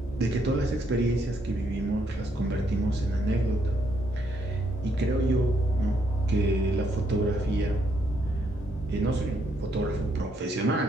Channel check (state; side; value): normal; both; correlation 0.74